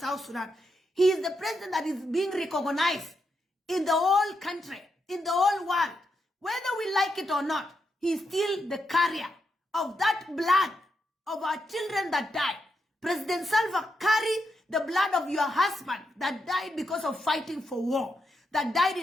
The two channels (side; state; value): both; normal; correlation 0.83